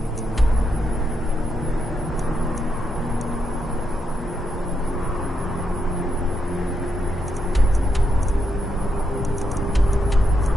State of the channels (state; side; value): normal; both; correlation 0.82